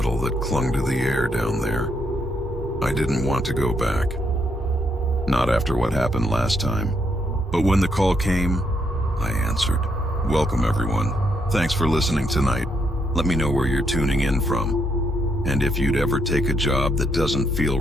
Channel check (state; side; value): normal; both; correlation 0.76